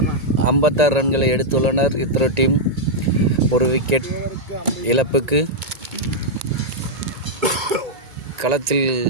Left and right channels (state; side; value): late; left; 1.9 ms